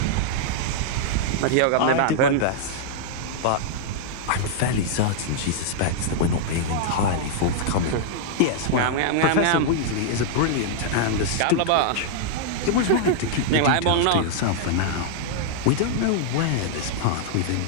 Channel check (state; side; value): different; both; correlation -0.01